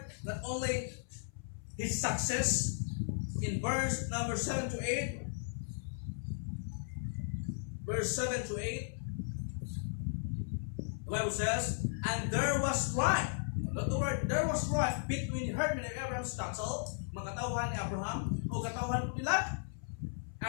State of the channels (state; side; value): silent; right; 54 dB below the other